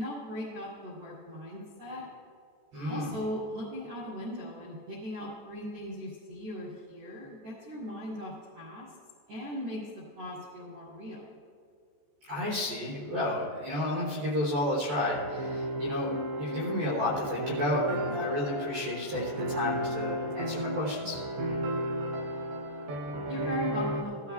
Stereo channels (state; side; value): late; left; 14 ms